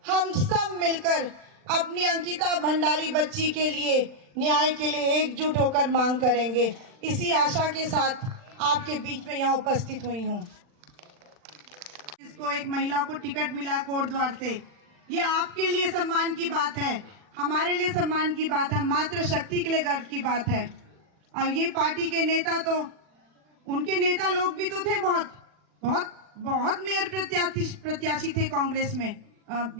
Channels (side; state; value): left; late; 40 ms